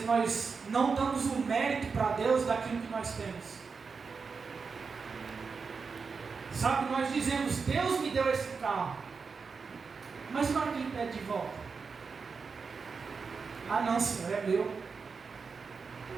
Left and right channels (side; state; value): left; quieter; 5.1 dB